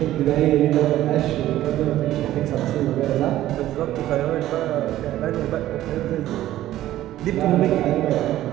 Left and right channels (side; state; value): left; quieter; 14.0 dB